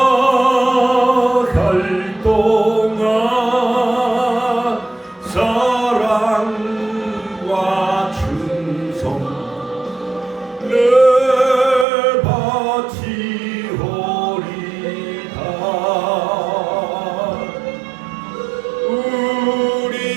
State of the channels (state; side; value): drops out; left; at 11.9 s